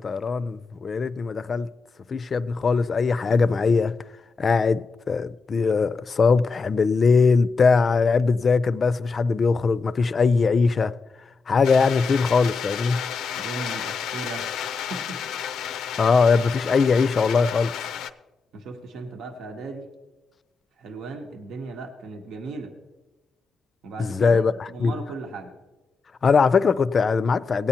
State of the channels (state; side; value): quieter; right; 4.5 dB